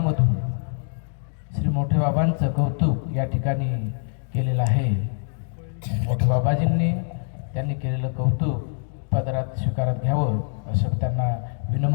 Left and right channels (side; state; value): right; silent; digital silence